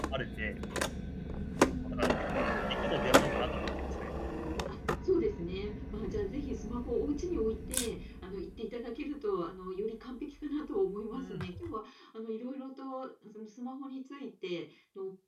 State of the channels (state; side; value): identical; both; correlation 1.00